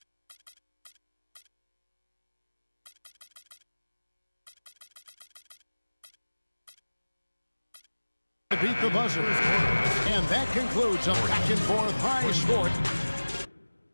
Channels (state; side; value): inverted; both; correlation -1.00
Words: beat the buzzer. And that concludes a back-and-forth high score.